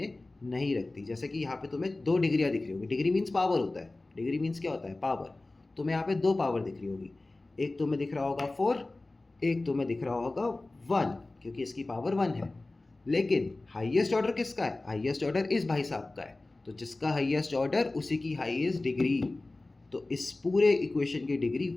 नहीं रखती। जैसे कि यहाँ पे तुम्हें 2 डिग्रियाँ दिख रही होगी, डिग्री मीन्स पावर होता है, डिग्री मीन्स क्या होता है, पावर। तुम्हें यहाँ पे 2 पावर दिख रही होगी, एक तुम्हें दिख रहा होगा 4, एक तुम्हें दिख रहा होगा 1, क्योंकि इसकी पावर 1 है। लेकिन हाईएस्ट ऑर्डर किसका है, हाईएस्ट ऑर्डर इस भाई साहब का है, तो जिसका हाईएस्ट ऑर्डर उसी की हाईएस्ट डिग्री। तो इस पूरे इक्वेशन की डिग्री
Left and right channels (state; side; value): quieter; right; 3.0 dB